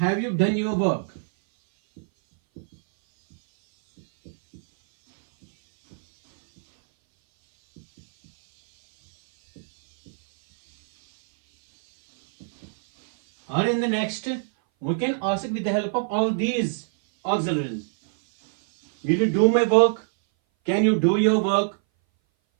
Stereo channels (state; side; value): silent; left; 60 dB below the other